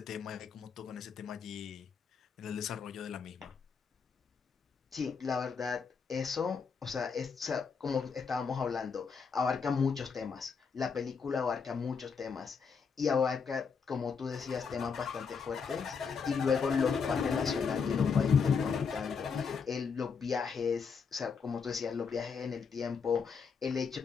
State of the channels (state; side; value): quieter; right; 5.8 dB